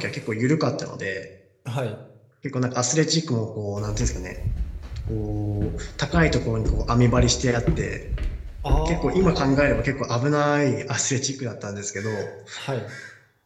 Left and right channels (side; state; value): both; identical; correlation 1.00